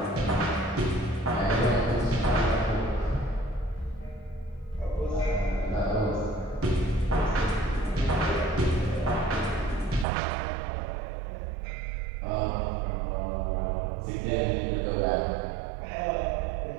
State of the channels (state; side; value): drops out; left; at 10.1 s